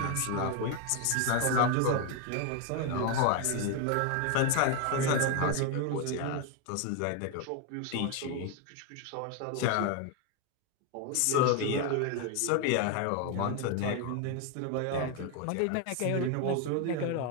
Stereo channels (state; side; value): different; both; correlation 0.01